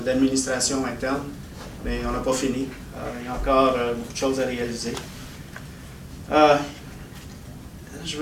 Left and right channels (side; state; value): both; identical; correlation 1.00